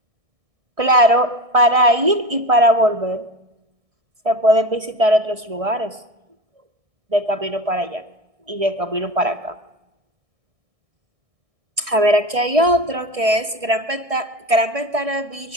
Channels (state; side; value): late; left; 1.6 ms